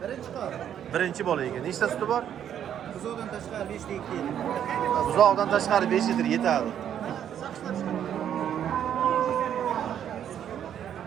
Birinchi qor. Birinchi bola ekan. Nechta suti bor? Buzoqdan tashqari 5 ta 2 yil. Buzoqdan tashqari 5 litr yetadi.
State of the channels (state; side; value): quieter; left; 9.6 dB